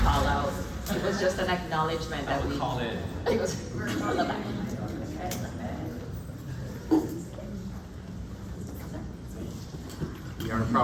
out. It was just an acknowledgement that we call it. It was on the back. We are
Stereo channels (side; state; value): both; identical; correlation 1.00